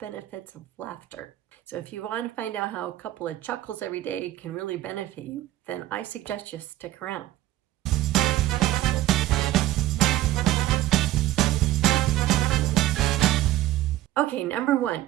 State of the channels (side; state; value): left; quieter; 14.7 dB